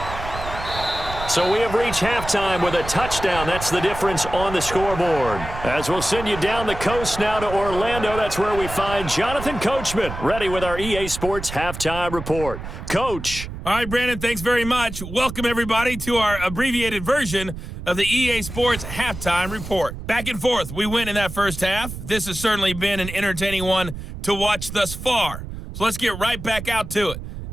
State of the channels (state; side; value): noise; right; rumble, 9 dB below the sound